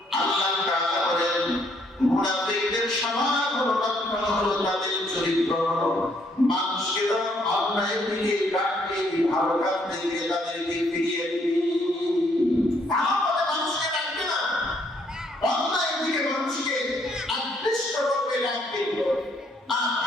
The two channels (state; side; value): normal; both; correlation 0.69